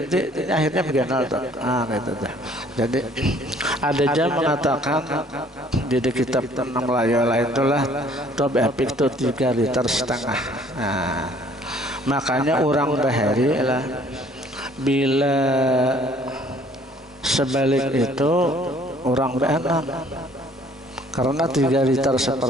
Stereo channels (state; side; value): normal; both; correlation 0.57